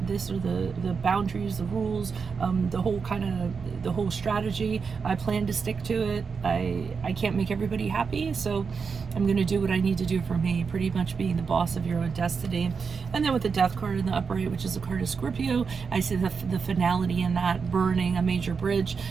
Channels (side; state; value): left; quieter; 5.5 dB